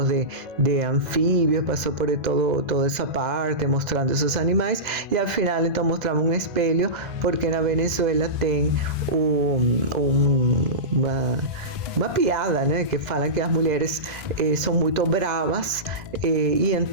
de anfíbios, passou por toda essa parte mostrando esses animais, e ao final então mostrava um espelho, porque na Venezuela tem uma piada, né, que falam que as mulheres são muito bravas, e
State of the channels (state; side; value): late; left; 2.0 ms